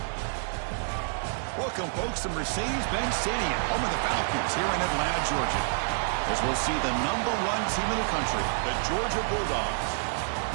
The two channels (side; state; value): left; silent; digital silence